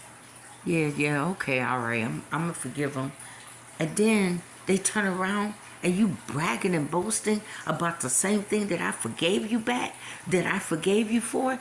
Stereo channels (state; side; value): identical; both; correlation 1.00